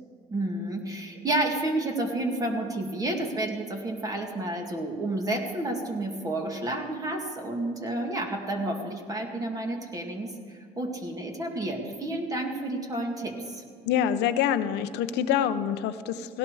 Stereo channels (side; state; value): both; normal; correlation 0.37